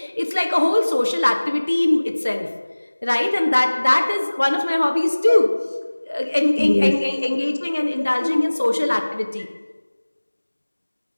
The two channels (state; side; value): inverted; both; correlation -1.00